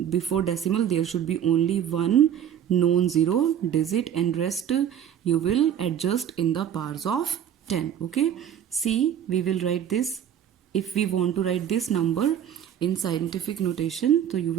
there should be only one non-zero digit and rest you will adjust in the powers of 10. Okay, see, we will write this. If we want to write this number in scientific notation, so you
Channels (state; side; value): quieter; left; 9.6 dB